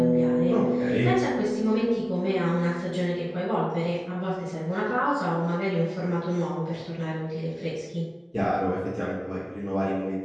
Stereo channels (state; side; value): identical; both; correlation 1.00